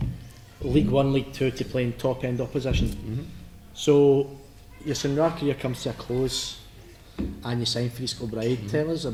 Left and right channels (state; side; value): identical; both; correlation 1.00